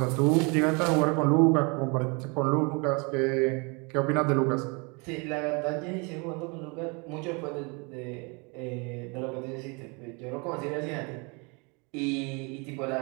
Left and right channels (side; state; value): left; quieter; 31.0 dB